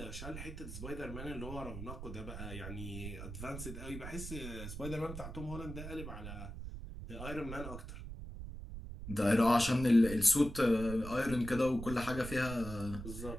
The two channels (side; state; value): right; noise; rumble, 9 dB below the sound